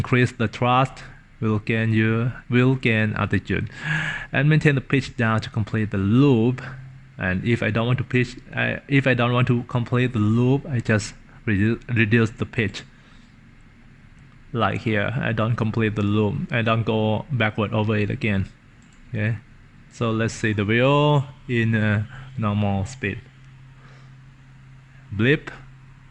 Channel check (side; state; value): both; identical; correlation 1.00